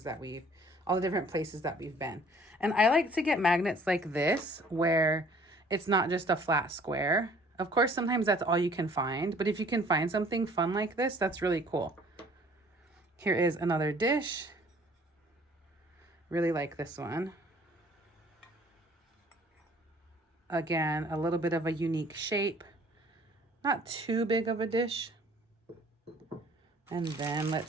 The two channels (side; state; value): both; normal; correlation 0.55